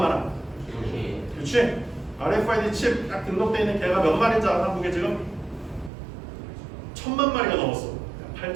그렇지? RFID 칩 딱 등록되어 있는 개가 몇 마리인지 알아? 한국에 지금? 1000만 마리가 넘었어.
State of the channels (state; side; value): drops out; left; at 5.9 s